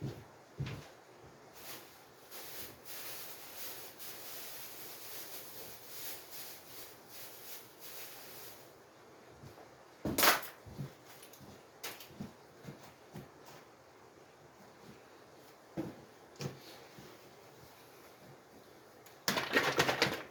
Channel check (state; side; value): identical; both; correlation 1.00